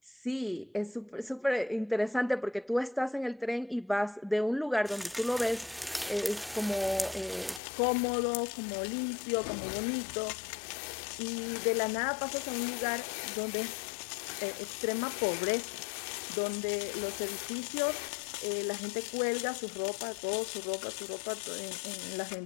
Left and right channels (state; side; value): drops out; right; at 7.6 s